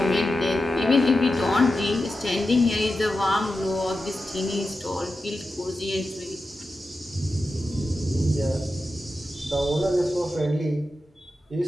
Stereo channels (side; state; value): both; normal; correlation 0.91